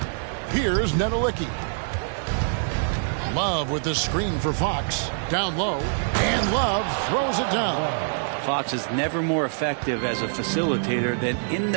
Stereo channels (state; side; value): silent; left; digital silence